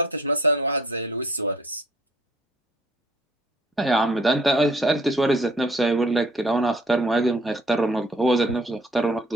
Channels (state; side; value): normal; both; correlation 0.56